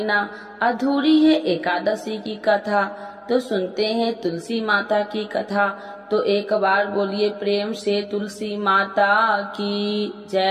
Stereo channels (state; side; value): identical; both; correlation 1.00